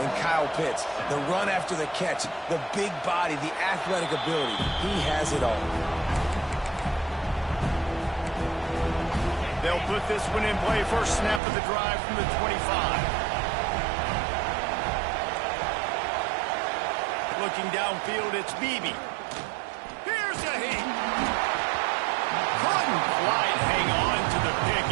Kyle Pitts. The run after the catch, the big body, the athletic ability. He has it all. They'll put this one in play. First snap of the drive from the 25. Looking downfield, it's Beebe. Here's a heat. Couldn't quite hang on to the pick,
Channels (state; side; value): drops out; left; at 11.4 s